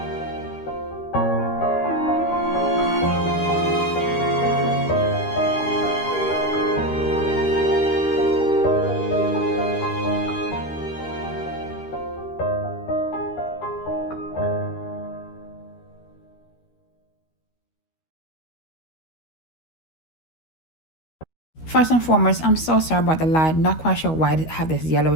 First and foremost, I'm so sorry about the light. Not quite sure why it have this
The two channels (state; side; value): late; right; 13 ms